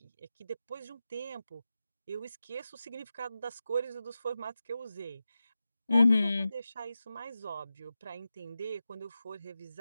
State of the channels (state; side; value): inverted; both; correlation -0.92